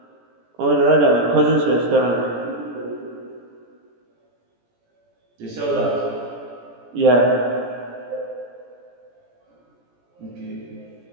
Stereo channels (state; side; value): late; left; 17 ms